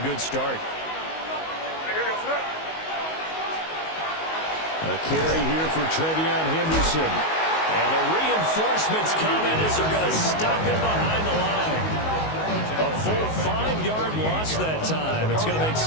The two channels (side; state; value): right; late; 19 ms